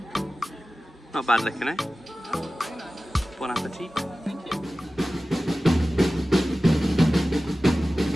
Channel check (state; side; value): normal; both; correlation 0.96